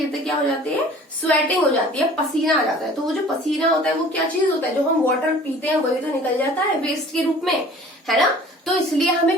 क्या हो जाती है, स्वेटिंग हो जाती है, पसीना आ जाता है। तो वो जो पसीना होता है वो क्या चीज होता है, जो हम वाटर पीते हैं वही तो निकल जाता है वेस्ट के रूप में, है ना। तो इसलिए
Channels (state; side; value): normal; both; correlation 0.48